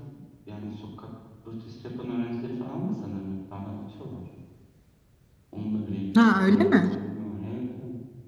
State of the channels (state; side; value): identical; both; correlation 1.00